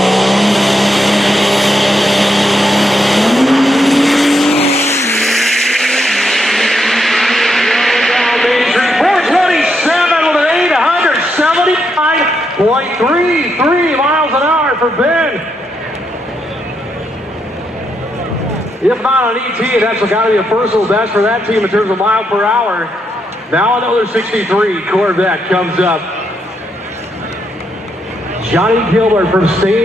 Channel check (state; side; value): normal; both; correlation 0.80